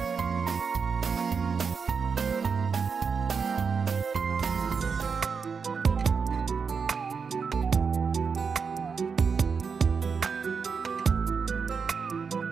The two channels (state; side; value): quieter; left; 5.7 dB